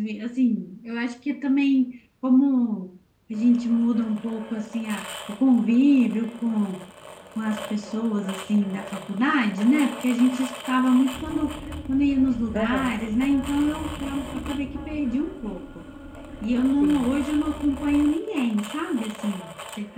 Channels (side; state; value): both; identical; correlation 1.00